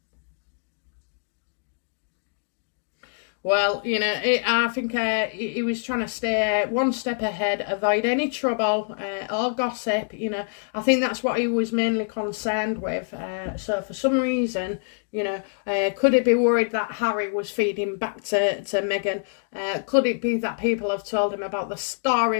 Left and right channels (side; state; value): right; silent; digital silence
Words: Well, you know, I think he was trying to stay one step ahead, avoid any trouble or gossip, you know. I think that's what he was mainly concerned with. So for some reason, you know, could it be worried that Harry was feeding back to Meghan? Could it be that people have told him about the